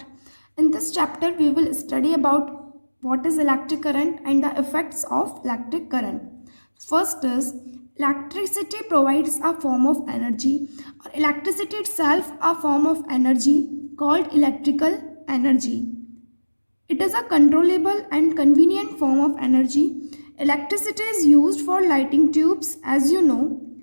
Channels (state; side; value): inverted; both; correlation -1.00